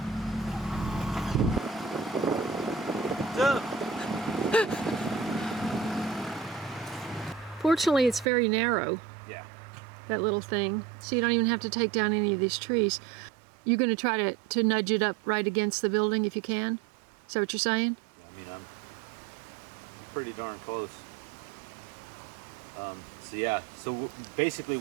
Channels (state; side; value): drops out; left; at 8.2 s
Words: Fortunately, it's very narrow. Yeah. That little thing. So you don't even have to take down any of these trees. You're going to try to nudge it up right against the building if you can? Is that what you're saying? Yeah, I mean, I'm pretty darn close. So yeah, so basically